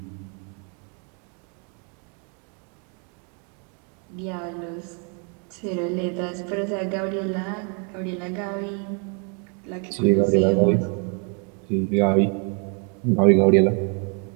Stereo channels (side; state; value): left; quieter; 38.4 dB